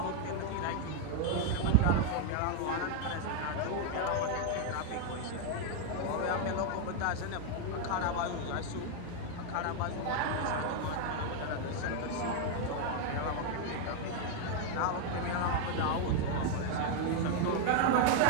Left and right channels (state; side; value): different; both; correlation 0.00